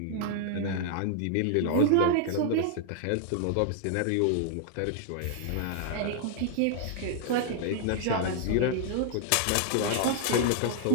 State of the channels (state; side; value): different; both; correlation 0.00